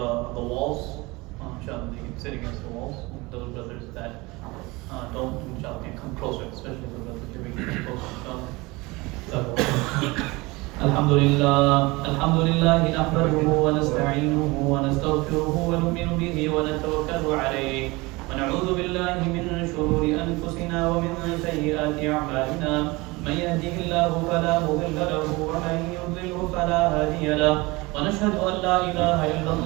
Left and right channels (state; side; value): quieter; left; 23.4 dB